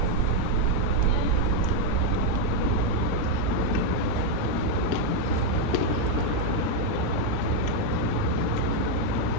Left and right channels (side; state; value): both; different; correlation 0.01